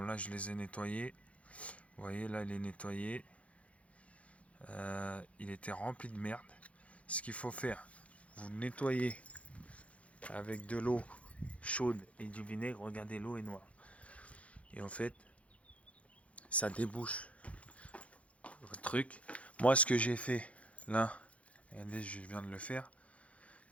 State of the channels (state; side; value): late; right; 0.064 ms